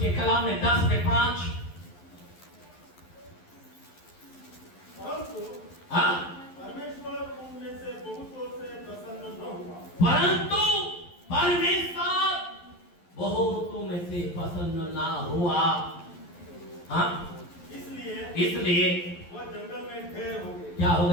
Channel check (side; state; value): right; late; 11 ms